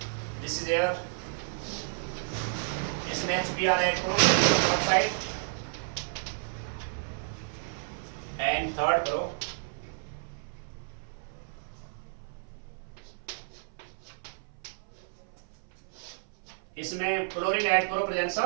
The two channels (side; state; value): left; silent; 56 dB below the other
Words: दिस इज एयर, इसमें HBr ऐड करो, पेरोक्साइड। एंड थर्ड करो, इसमें क्लोरीन ऐड करो, presence